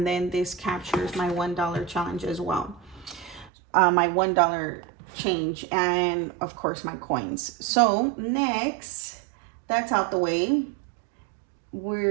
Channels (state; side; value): drops out; left; at 3.5 s